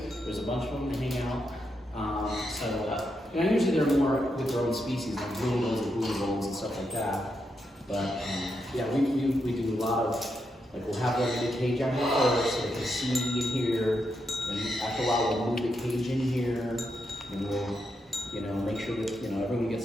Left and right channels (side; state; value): both; normal; correlation 0.83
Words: there's a bunch of them, they hang out. Usually they're more with their own species, like blue bulls and blue bulls and stuff like that. But yeah, we do a lot of, like we'll have like a cage out here first so they can see and hear. And after a while we'll move the cage in here and we'll, make sure that, everyone